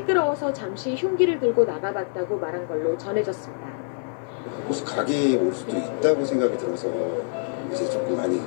잠시 흉기를 들고 나가봤다고 말한 걸로 전해졌습니다. 혹시 가게에 올 수도 있다고 생각이 들어서 이제 조금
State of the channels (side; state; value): right; silent; 62 dB below the other